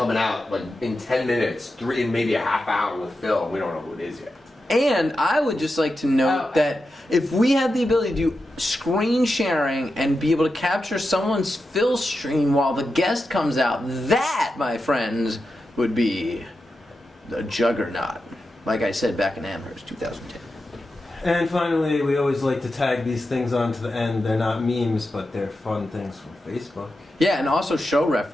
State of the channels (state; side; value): normal; both; correlation 0.90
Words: out like in 10 minutes, in maybe a half hour with Phil. We don't know who it is yet. And I would just like to note that if we had the ability to do screen sharing and be able to capture someone's Phil stream while the guest comes out, that, my friends, would be the juggernaut. Like I said back in Amherst, 2010. And finally, we always like to tag these things onto the end. They're not memes, but they're fun things from Facebook. Yeah, and also show